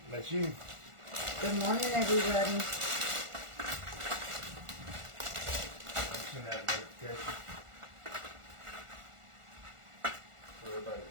That's you. Good morning, everybody. Send out a notification for everybody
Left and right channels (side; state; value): left; late; 1.4 ms